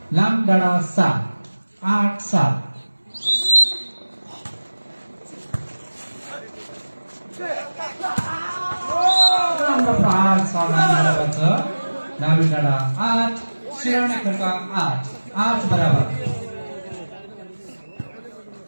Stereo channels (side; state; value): both; inverted; correlation -1.00